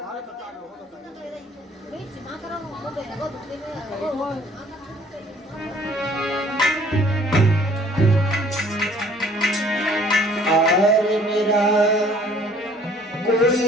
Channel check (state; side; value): normal; both; correlation 0.56